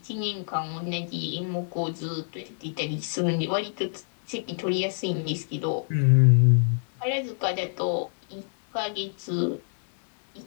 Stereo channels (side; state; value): right; silent; 60 dB below the other